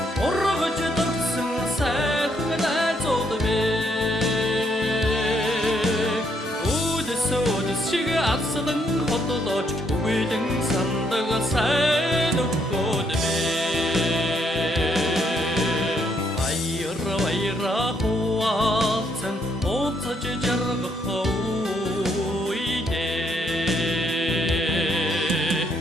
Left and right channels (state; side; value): normal; both; correlation 0.73